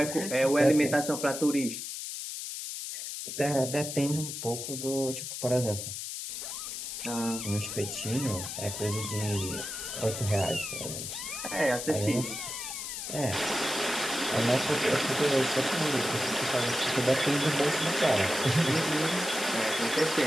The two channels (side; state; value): left; noise; hiss, 6 dB below the sound